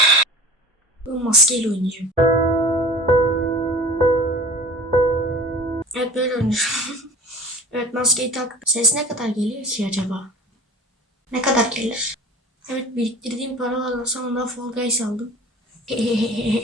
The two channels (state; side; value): normal; both; correlation 0.40